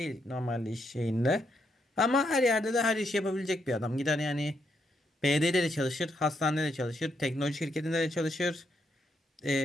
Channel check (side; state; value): both; normal; correlation 0.78